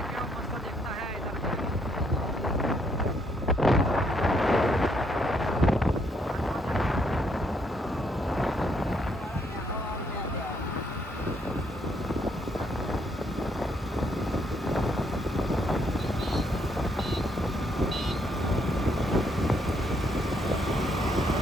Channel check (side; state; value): both; normal; correlation 0.72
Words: કેવો મસ્ત દેખતા હે ઇધર.